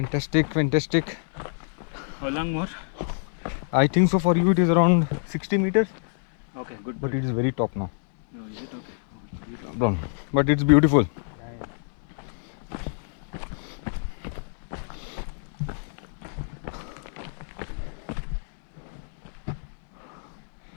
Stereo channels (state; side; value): silent; right; digital silence